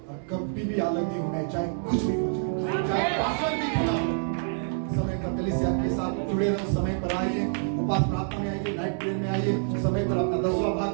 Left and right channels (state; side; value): silent; left; digital silence